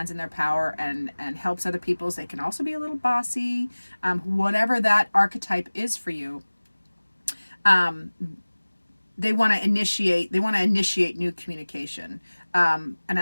in their power and helps other people. They can also be a little bossy. Whatever that archetype is for you, they want to initiate new communication.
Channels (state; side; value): inverted; both; correlation -1.00